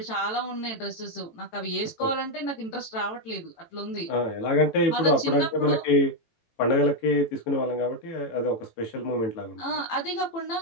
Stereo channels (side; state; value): right; late; 18 ms